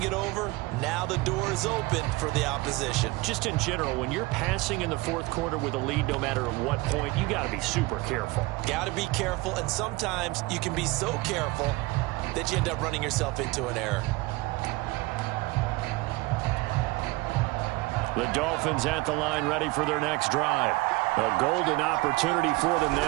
it over, now the door is open for the opposition. Just in general, when you're passing in the 4th quarter with a lead, no matter at what point, you got to be super careful. Got to be careful, and sometimes you can be so careful that you end up running yourself into an error. The Dolphins at the line, ready for their next drive. A golden opportunity for them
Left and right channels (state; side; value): quieter; left; 22.1 dB